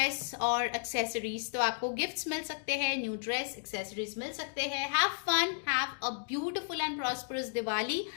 और एक्सेसरीज। तो आपको गिफ्ट्स मिल सकते हैं, न्यू ड्रेस, एक्सेसरीज मिल सकते हैं। Have fun, have a beautiful and prosperous Diwali.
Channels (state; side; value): silent; right; digital silence